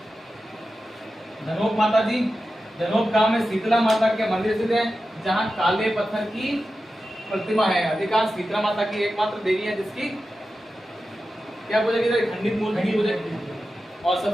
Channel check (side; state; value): both; normal; correlation 0.92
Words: धनोप माता जी, धनोप गांव में शीतला माता के मंदिर स्थित है, जहाँ काले पत्थर की प्रतिमा है। अधिकांश शीतला माता की एकमात्र देवी है जिसकी क्या पूजा की जाती है? खंडित मूर्ति की पूजा। और